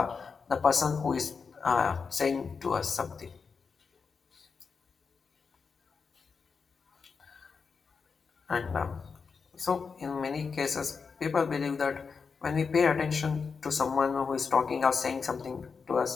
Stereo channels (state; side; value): quieter; right; 5.4 dB